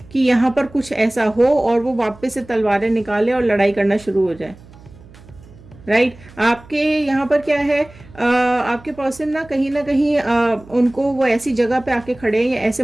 कि यहाँ पर कुछ ऐसा हो और वो वापस से तलवारें निकाले और लड़ाई करना शुरू हो जाए। राइट, आपके यहाँ पर क्या है, आपके पर्सन ना कहीं उनको वो ऐसी जगह पे आके खड़े हैं या ऐसे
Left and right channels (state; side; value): noise; right; hum, 22 dB below the sound